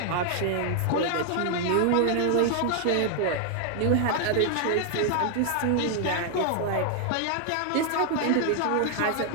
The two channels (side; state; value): both; different; correlation 0.00